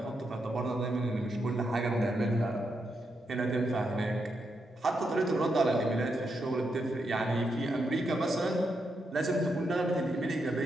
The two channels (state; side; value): normal; both; correlation 0.83